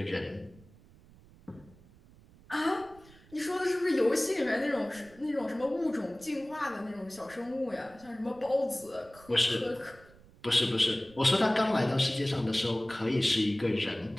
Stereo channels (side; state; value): right; noise; rumble, 25 dB below the sound